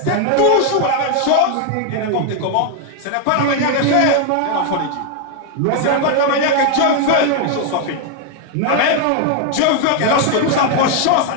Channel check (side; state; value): both; different; correlation 0.01